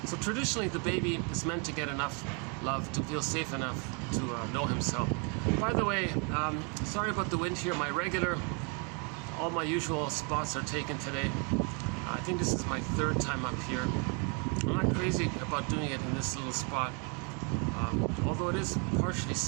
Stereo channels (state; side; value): quieter; left; 35.5 dB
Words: So traditionally, the baby is meant to get enough love to feel safe enough to know himself. By the way, sorry about the wind here. All my usual spots are taken today. I think this is my third time up here. I'm not crazy about doing it in this little spot, although it is partially